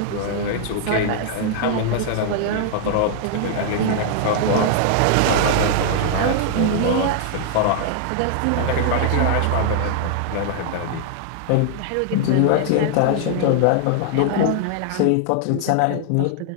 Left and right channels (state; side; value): different; both; correlation -0.01